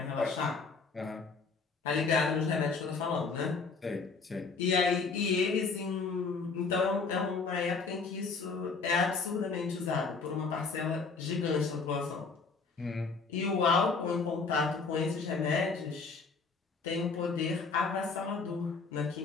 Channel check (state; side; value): quieter; right; 4.6 dB